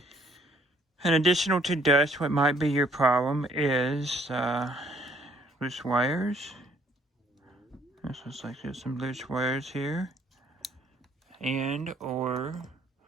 And additional to dust, what might be your problem is loose wires. This looks like there's some loose wires here. And or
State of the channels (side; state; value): both; normal; correlation 0.64